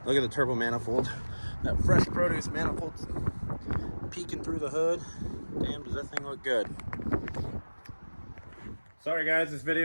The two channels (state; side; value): inverted; both; correlation -1.00